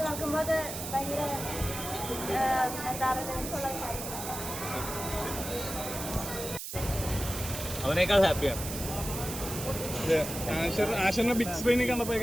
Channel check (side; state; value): right; noise; hiss, 7 dB below the sound